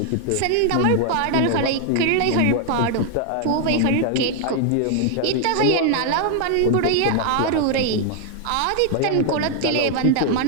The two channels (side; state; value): both; different; correlation 0.00